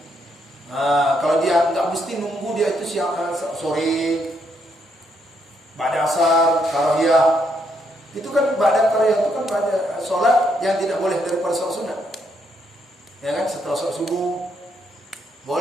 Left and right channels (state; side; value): normal; both; correlation 0.75